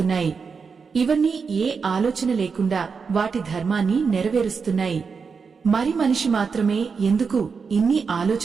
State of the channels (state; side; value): quieter; left; 5.4 dB